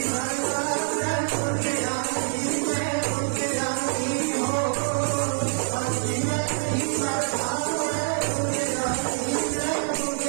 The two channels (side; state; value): left; silent; digital silence